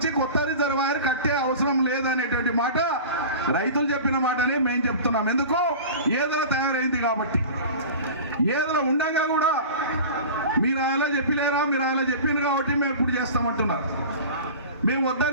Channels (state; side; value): inverted; both; correlation -0.35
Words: కొత్త రిజర్వాయర్ కట్టే అవసరం లేదనేటువంటి మాట రైతులు చెప్పిన మాటనే మేము చెప్తున్నాం. ఎందుకు? ఏదో తయారైంది కాబట్టి. ఏదో ఉండగా కూడా మీరు ఆయన చెప్పలేరా, మీరు ఆయన చెప్పింది కాబట్టి మేము ఇప్పుడు చేస్తామంటున్నారు. మేము